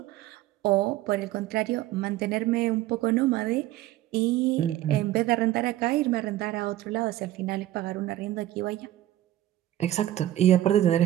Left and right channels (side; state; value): left; quieter; 14.2 dB